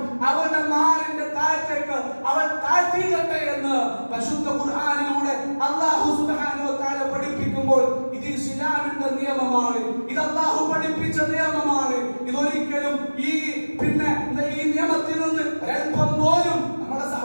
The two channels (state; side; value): inverted; both; correlation -1.00